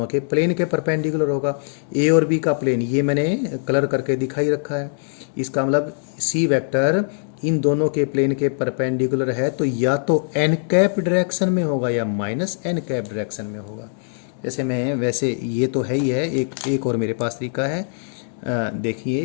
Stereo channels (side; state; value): right; silent; digital silence